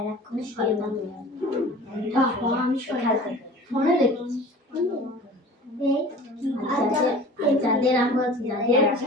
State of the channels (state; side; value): normal; both; correlation 0.42